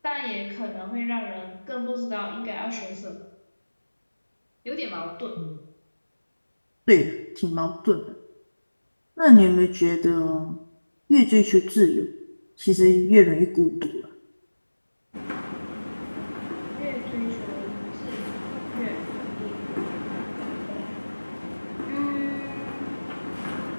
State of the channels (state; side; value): inverted; both; correlation -1.00